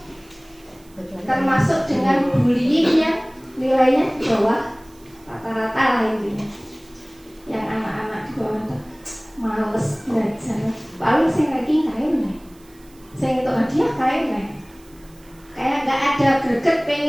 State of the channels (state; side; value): noise; right; hiss, 28 dB below the sound